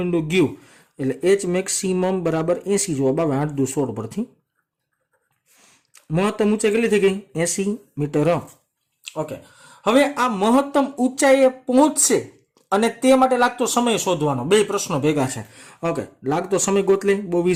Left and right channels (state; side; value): identical; both; correlation 1.00